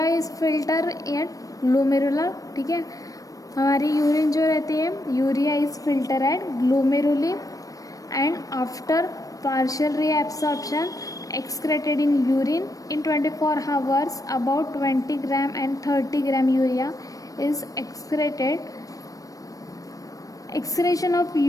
is filter at glomerular, ठीक है. हमारी urine जो रहती है, urea is filter at glomeruli and after partial reabsorption excreted in urine in 24 hours. About 20 gram and 30 gram urea is excreted. Excretion of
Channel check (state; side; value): late; right; 0.17 ms